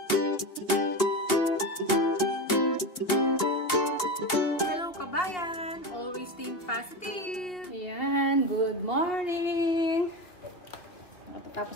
Hello kabayan! Always think positive! Ayan, good morning! Tapos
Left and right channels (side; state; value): right; late; 2.8 ms